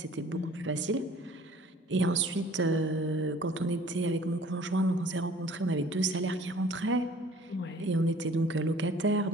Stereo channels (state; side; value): normal; both; correlation 0.52